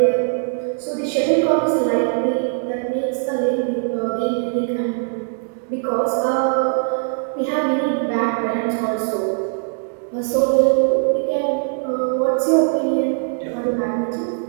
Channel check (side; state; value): left; silent; digital silence